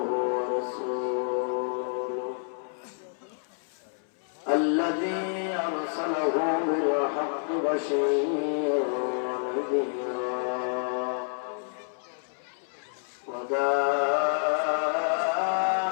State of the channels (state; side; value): silent; right; 59 dB below the other